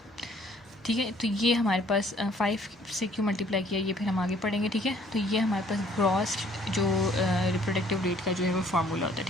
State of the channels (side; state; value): both; normal; correlation 0.60